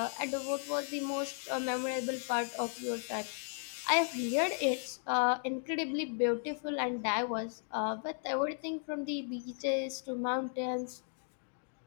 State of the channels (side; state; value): right; silent; 54 dB below the other